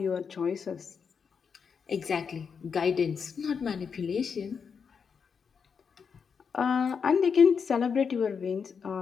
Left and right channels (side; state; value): right; quieter; 6.2 dB